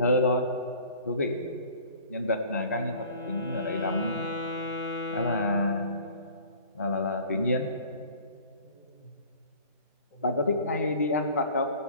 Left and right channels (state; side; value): inverted; both; correlation -0.47